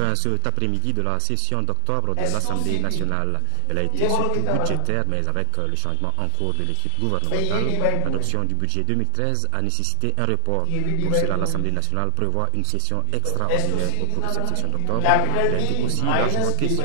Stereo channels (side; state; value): both; different; correlation 0.00